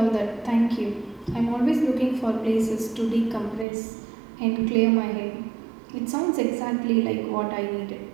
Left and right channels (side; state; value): left; drops out; at 3.7 s